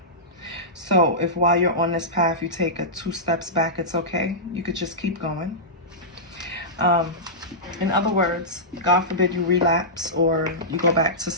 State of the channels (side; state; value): both; normal; correlation -0.14